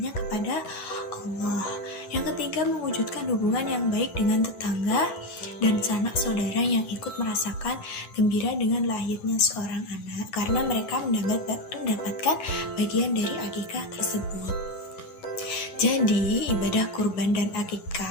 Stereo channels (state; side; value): late; right; 11 ms